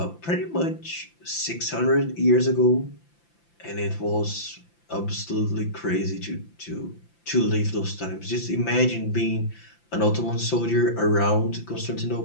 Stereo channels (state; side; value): late; right; 5.8 ms